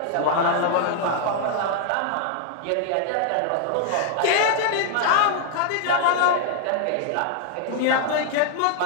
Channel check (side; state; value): both; different; correlation 0.00